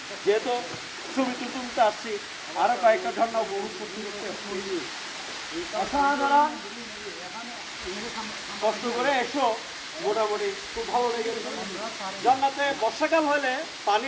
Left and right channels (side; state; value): both; identical; correlation 1.00